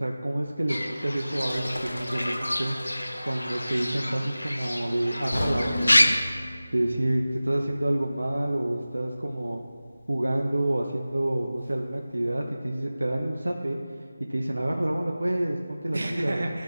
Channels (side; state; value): both; inverted; correlation -0.97